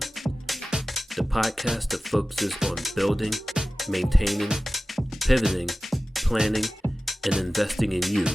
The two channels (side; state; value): both; normal; correlation 0.96